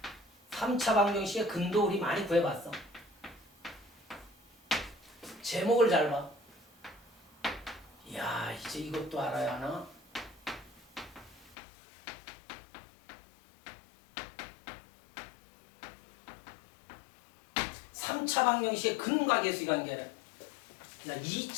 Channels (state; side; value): drops out; right; at 11.6 s